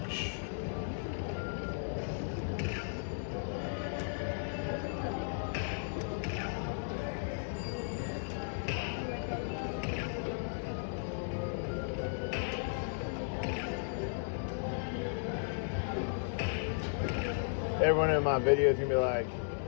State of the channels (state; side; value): silent; right; digital silence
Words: Everyone in my video is gonna be like,